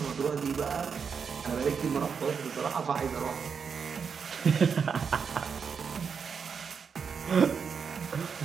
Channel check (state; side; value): quieter; left; 6.2 dB